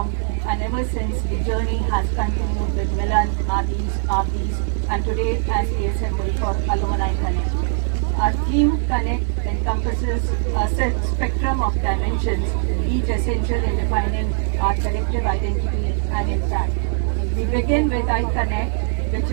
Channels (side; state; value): left; silent; 60 dB below the other